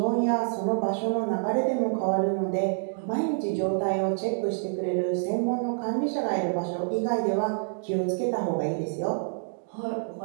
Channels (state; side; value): silent; left; digital silence